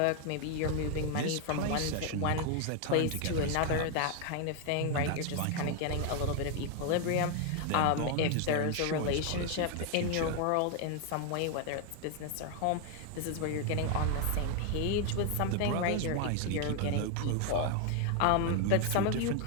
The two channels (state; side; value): different; both; correlation 0.01